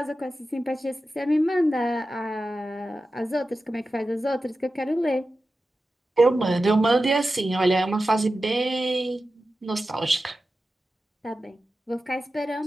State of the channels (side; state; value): both; normal; correlation 0.93